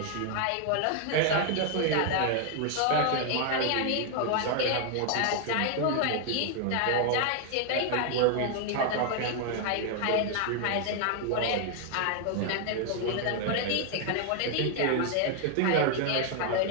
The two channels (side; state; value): both; different; correlation 0.00